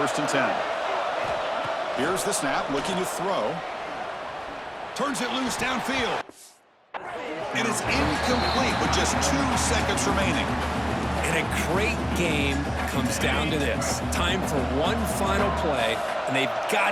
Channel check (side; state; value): both; identical; correlation 1.00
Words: and 10. Here's the snap, looking to throw. Turns it loose downfield. It is incomplete with just 2 seconds remaining. And a great game comes down to this. Time for one final play, and they've got